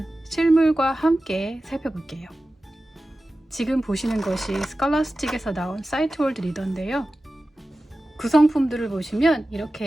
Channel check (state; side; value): normal; both; correlation 0.95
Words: 실물과 함께 살펴볼게요. 지금 보시는 것이 스칼라스틱에서 나온 사이트월드 리더인데요. 구성품들을 보시면